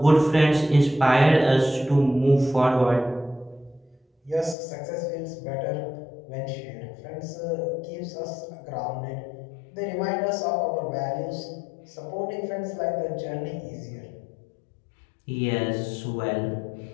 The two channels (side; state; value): right; drops out; at 4.5 s